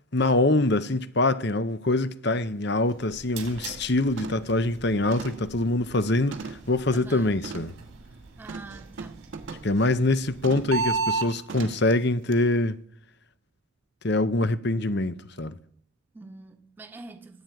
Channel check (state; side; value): normal; both; correlation 0.32